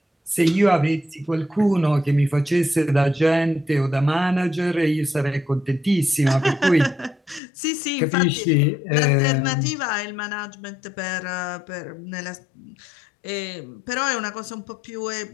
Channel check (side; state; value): right; drops out; at 7.4 s